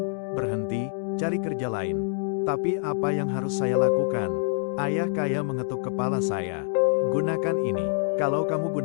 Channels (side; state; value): right; silent; 61 dB below the other